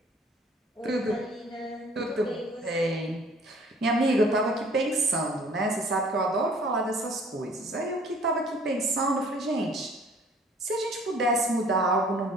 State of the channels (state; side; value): normal; both; correlation 0.54